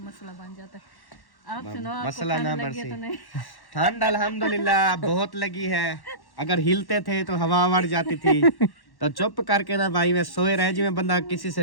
मसला बन जाता है। आप सुनो मसला ना लगी तो नहीं? ठंड अल्हम्दुलिल्लाह बहुत लगी है। अगर हिलते थे तो हवा मर जाती थी, तो चुप करके ना भाई में सोए रहे जिसमें बंदा किसी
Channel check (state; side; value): late; right; 1.1 ms